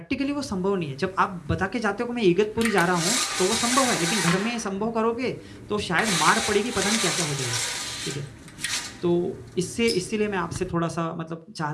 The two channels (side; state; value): both; identical; correlation 1.00